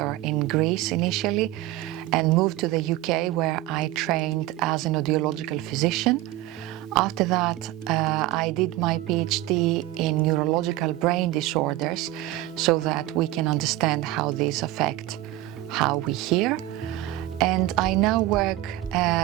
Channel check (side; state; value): left; quieter; 16.0 dB